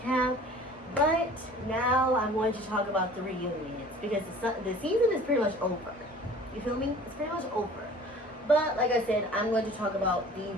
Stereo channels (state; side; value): normal; both; correlation 0.46